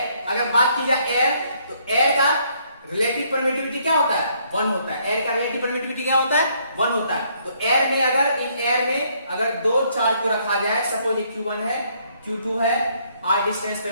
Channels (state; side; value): inverted; both; correlation -0.68